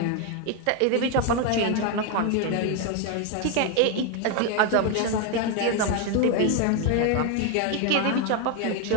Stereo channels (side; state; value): both; different; correlation 0.01